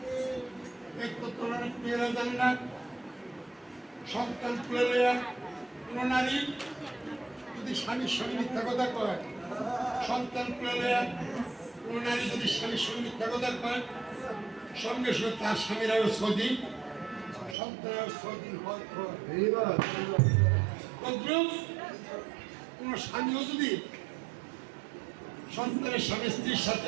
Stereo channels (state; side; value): drops out; left; at 17.6 s